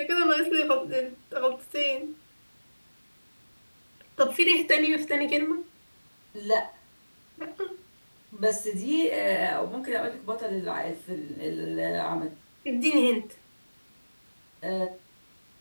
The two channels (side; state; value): both; inverted; correlation -1.00